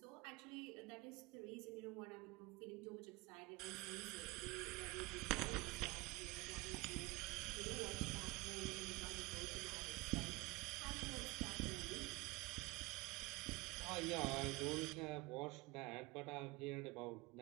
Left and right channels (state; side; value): quieter; left; 23.0 dB